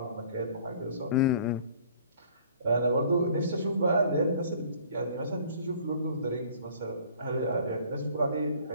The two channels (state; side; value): inverted; both; correlation -0.52